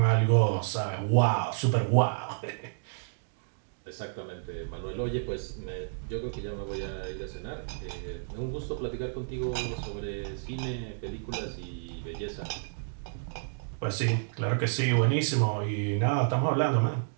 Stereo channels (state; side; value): silent; left; digital silence